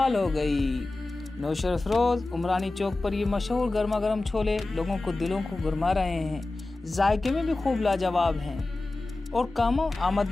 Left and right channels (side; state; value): right; quieter; 3.0 dB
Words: हो गई। नौशेरा फिरोज उमरानी चौक पर ये मशहूर गर्मा गर्म छोले लोगों को दिलों को गुरमा रहे हैं। जायके में भी खूब लाजवाब हैं और कम